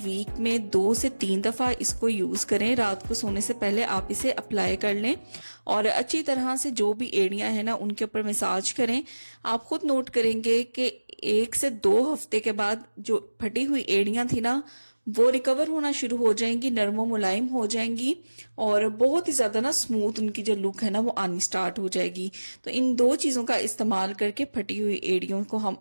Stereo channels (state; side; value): inverted; both; correlation -1.00